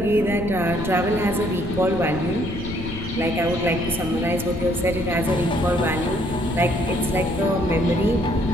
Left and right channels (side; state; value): left; noise; rumble, 9 dB below the sound